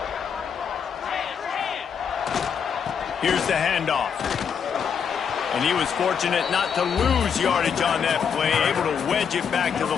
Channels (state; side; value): quieter; right; 7.1 dB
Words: Here's the handoff. And he was fortunate not to lose yardage on that play, able to wedge it back to the